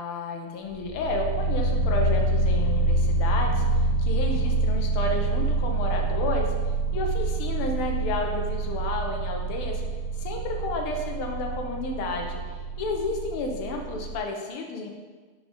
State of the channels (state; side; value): late; right; 6.7 ms